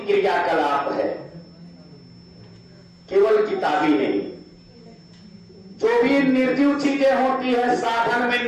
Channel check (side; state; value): both; identical; correlation 1.00